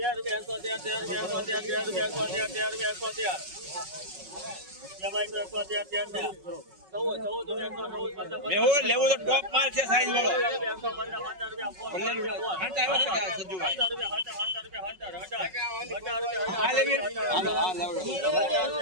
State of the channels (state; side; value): late; left; 5.4 ms